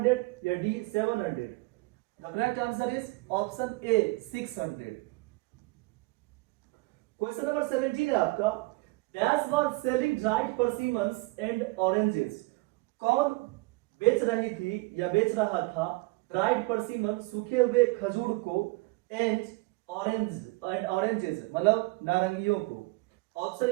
या D 700। The correct answer is option A 600। Question number 17 है आपका, dash was selling dried persimmons and oranges. कौन बेच रही थी या बेच रहा था ड्राइड परसिमन, सूखे हुए खजूर को, एंड ऑरेंजेस मतलब नारंगियों को। ऑप्शन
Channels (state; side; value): quieter; left; 23.5 dB